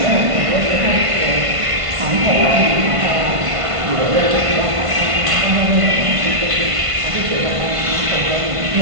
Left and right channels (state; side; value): late; left; 1.5 ms